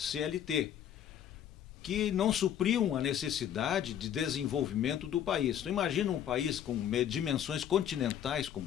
que não supriam a necessidade de desenvolvimento do país. Então, imagina um país com dimensões continentais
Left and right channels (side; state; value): right; quieter; 9.9 dB